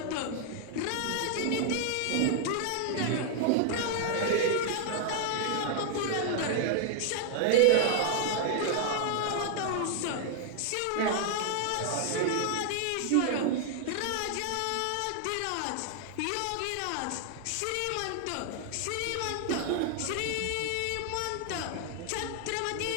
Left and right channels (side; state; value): both; different; correlation 0.00